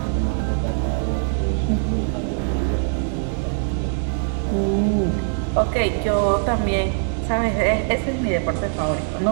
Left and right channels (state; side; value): silent; left; 64 dB below the other